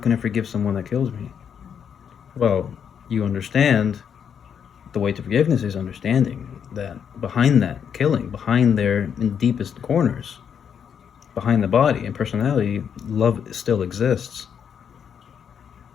I forgive someone that kills me? Well, you understand the way to forgiveness is understanding that behind that killing, behind their in deepest corners, behind the body and personality, love still exists.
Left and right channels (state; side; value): quieter; right; 7.8 dB